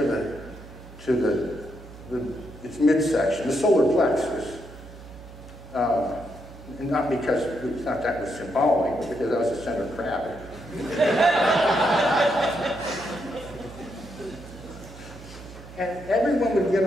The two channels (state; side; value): noise; right; hum, 17 dB below the sound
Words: its midsection, the solar plexus. And not because we thought that was symbolic, but because that was the center of gravity. And everyone would get